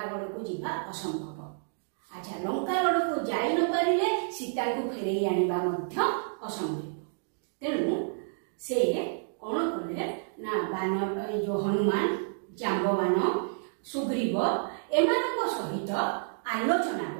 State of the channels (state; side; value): silent; left; digital silence